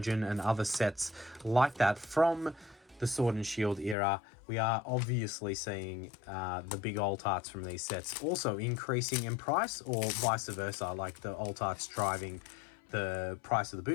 and other sets like that from the Sword and Shield era, we are obviously seeing the big alt arts from these sets also increasing in price, or vice versa, like the alt arts driving the price of the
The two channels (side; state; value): right; drops out; at 4.0 s